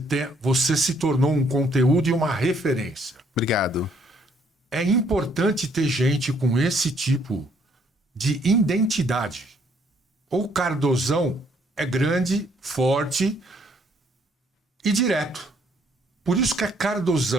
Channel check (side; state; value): both; normal; correlation 0.66